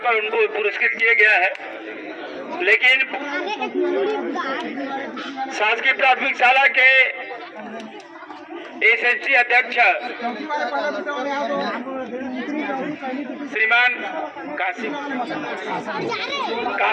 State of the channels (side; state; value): both; identical; correlation 1.00